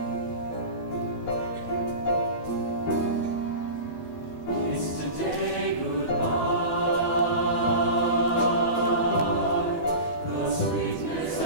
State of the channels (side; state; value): right; late; 12 ms